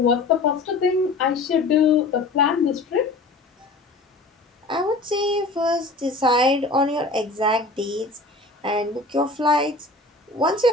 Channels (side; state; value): right; quieter; 3.3 dB